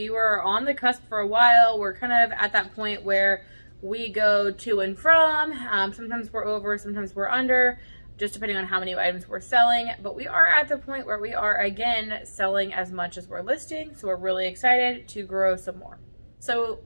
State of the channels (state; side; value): inverted; both; correlation -1.00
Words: were on the cusp for a while. We're kind of at that point where we go to and from. Sometimes we're over, sometimes we're under, just depending on how many items we're selling. But we are at the point where we are, again, selling as much as we're listing. So we're really excited to grow some more. So